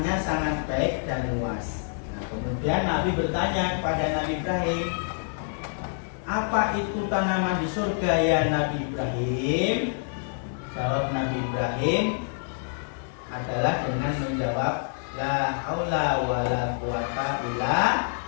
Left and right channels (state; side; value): silent; right; 60 dB below the other